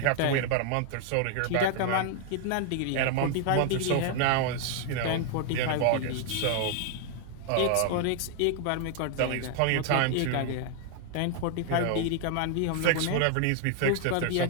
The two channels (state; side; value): different; both; correlation 0.00